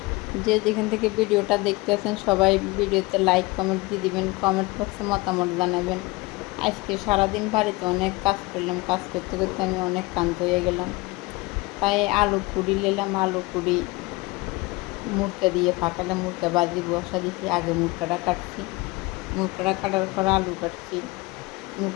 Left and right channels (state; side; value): quieter; right; 22.7 dB